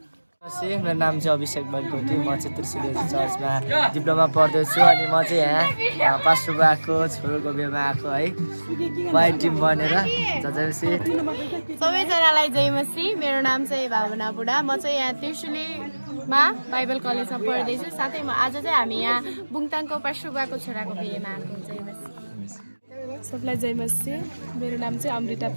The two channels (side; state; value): both; inverted; correlation -1.00